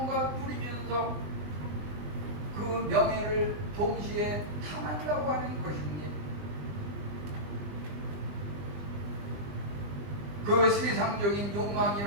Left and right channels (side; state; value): left; late; 20 ms